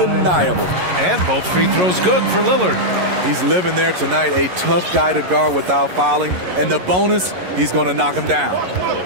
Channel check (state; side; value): late; left; 11 ms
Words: And both free throws good for Lillard. He's living there tonight, a tough guy to guard without fouling. And the bonus, he's going to knock him down.